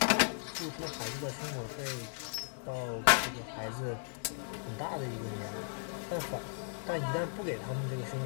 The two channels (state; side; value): silent; right; digital silence